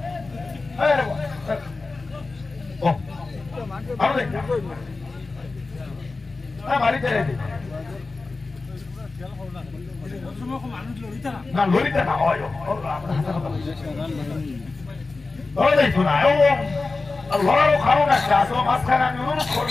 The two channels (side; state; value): right; quieter; 3.7 dB